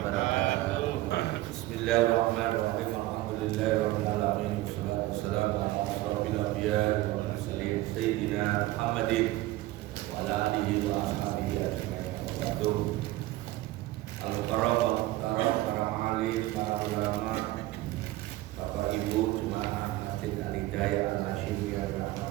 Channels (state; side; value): quieter; left; 17.3 dB